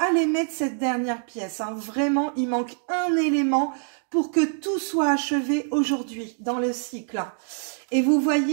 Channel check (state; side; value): silent; left; 62 dB below the other